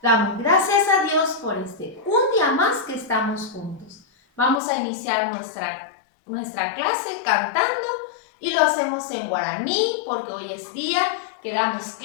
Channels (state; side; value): drops out; right; at 4.6 s